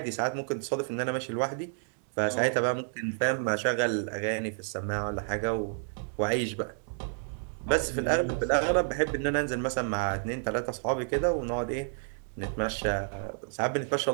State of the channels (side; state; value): left; silent; digital silence